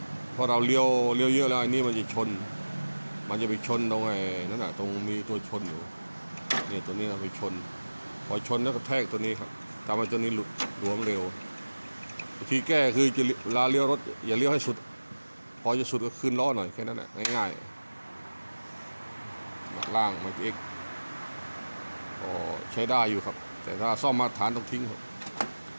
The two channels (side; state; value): both; inverted; correlation -1.00